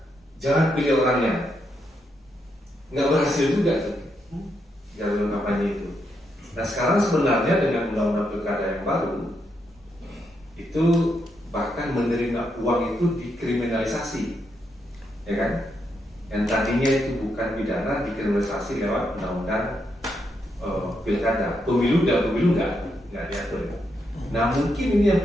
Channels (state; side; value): normal; both; correlation 0.80